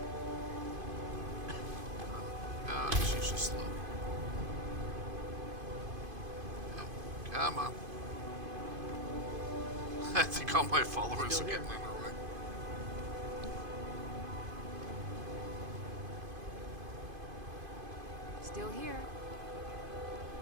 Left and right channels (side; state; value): left; late; 2.5 ms